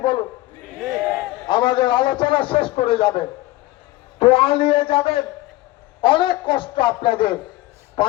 বলুন? আমাদের আলোচনা শেষ করে যাবেন, দোয়া নিয়ে যাবেন। অনেক কষ্ট আপনাদের,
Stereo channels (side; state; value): right; quieter; 18.2 dB